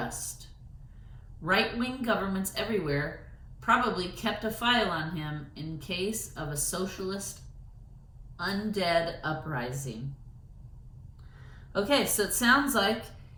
Right-wing governments everywhere probably kept a file on him in case of a socialist undead uprising. Okay, so it sounds like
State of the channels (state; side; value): identical; both; correlation 1.00